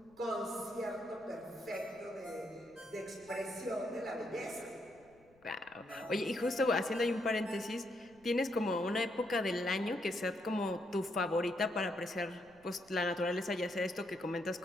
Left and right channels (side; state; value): left; noise; rumble, 30 dB below the sound